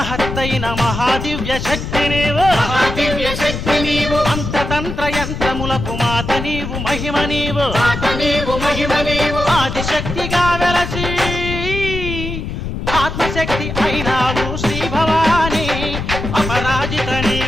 మహాదివ్య శక్తి నీవు మహాదివ్య శక్తి నీవు అంతతంత్ర యంత్రములకు మాత నీవు మహిమ నీవు మాత నీవు మహిమ నీవు ఆదిశక్తిగా వెలసి ఆత్మశక్తి అయినావు శ్రీ భవాని అపరాజిత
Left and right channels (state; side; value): noise; left; rumble, 5 dB below the sound